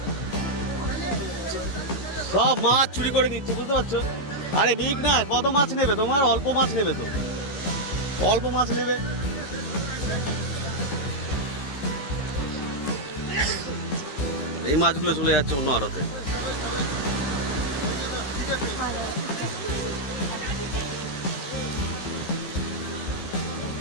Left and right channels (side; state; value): right; late; 15 ms